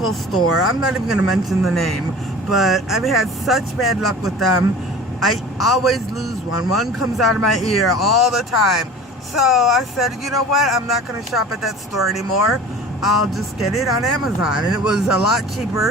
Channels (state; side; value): normal; both; correlation 0.40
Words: store. I'm not even going to mention the name, but I've had such bad luck with them. I always lose one. One comes out of my ear all the time. So I said, you know what? I'm not going to shop at that store anymore. I'll just get it on Amazon. And it was a lot